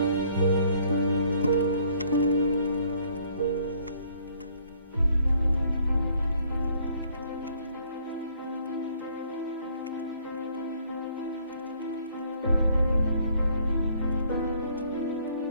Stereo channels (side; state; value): both; inverted; correlation -0.63